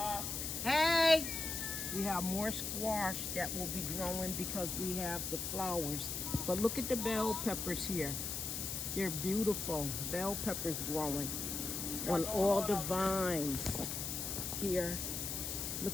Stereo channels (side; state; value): left; noise; hiss, 3 dB below the sound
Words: Hey! We have more squash that will be growing because we have the flowers. But look at the bell peppers here. They're beautiful. Bell peppers growing on all the vines here.